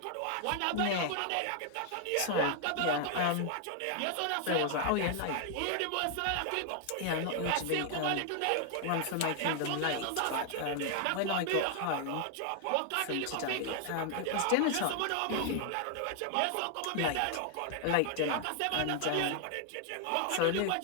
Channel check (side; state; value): both; different; correlation 0.00